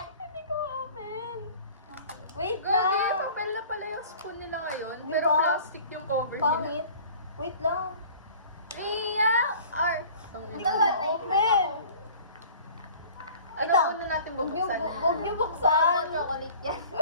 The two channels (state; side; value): inverted; both; correlation -0.46